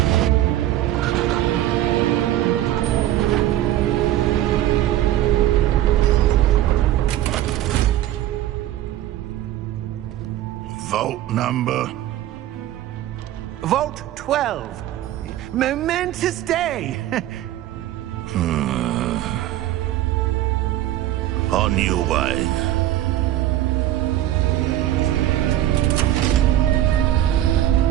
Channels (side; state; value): left; quieter; 13.4 dB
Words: Vault number? Vault 12. Momentous day. On your way.